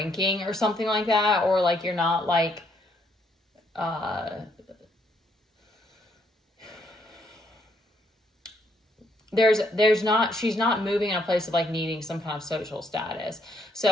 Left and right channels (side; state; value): both; normal; correlation 0.72